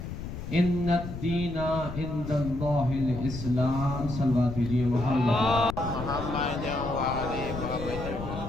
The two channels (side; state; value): left; noise; rumble, 8 dB below the sound